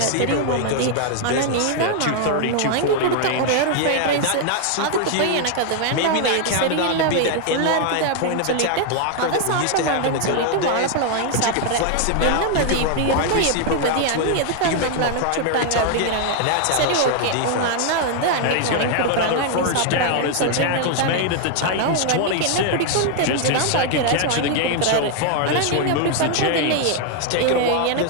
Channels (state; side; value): different; both; correlation 0.00